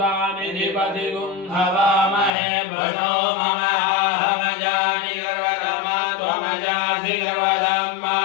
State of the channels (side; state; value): right; drops out; at 2.3 s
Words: निधिपतिगुं हवामहे भजो मम अहमजानि गर्वगमा त्वमजासि गर्वधम्मा